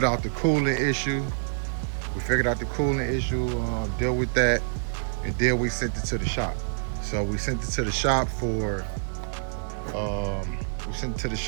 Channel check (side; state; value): left; silent; 60 dB below the other